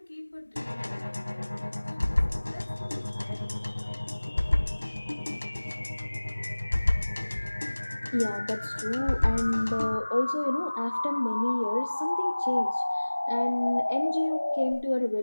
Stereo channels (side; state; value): both; inverted; correlation -1.00